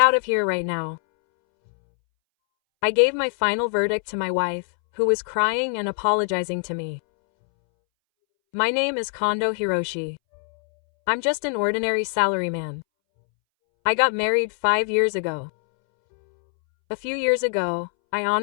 of here right now. I gave my final verdict to my wife, who was crying and apologizing to me. My name is Kondo Hiroshi. I'm just an ordinary salaryman. I got married 5 years ago. A few years ago, I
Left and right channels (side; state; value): right; silent; 63 dB below the other